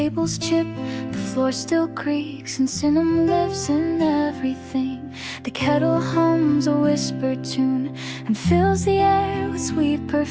chip, the floor still creaks, and cinnamon lives in everything. The kettle hums a whispered tune and fills the air with sweet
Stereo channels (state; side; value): identical; both; correlation 1.00